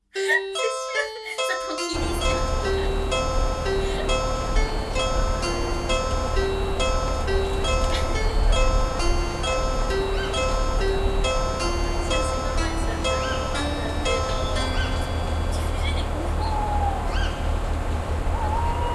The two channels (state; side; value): identical; both; correlation 1.00